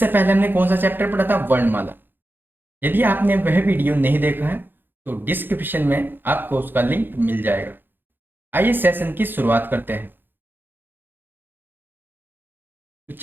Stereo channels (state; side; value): late; left; 0.096 ms